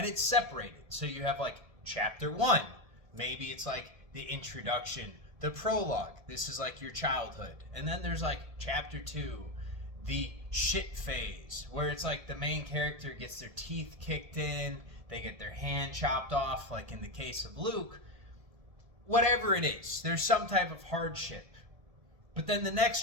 it's separated. So you have like chapter 1, maybe it's like the introduction, the prologue, this is like your childhood. And then there's like chapter 2, the shit phase, where it's like the main character gets their teeth kicked in, they get their hand chopped off, like in the case of Luke. Whatever it is, there's some type of hardship. But then the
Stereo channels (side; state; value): left; late; 1.7 ms